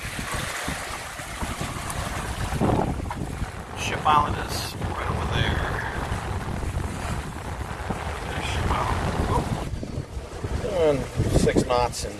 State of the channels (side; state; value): both; identical; correlation 1.00